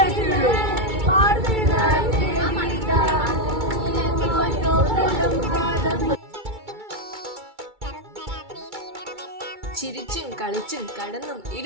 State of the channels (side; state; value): left; late; 2.3 ms